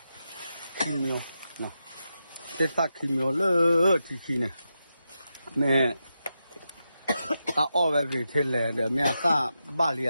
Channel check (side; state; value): both; inverted; correlation -0.87